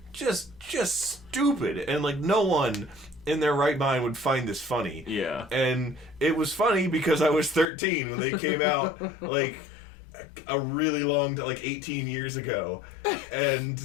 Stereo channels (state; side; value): drops out; right; at 7.7 s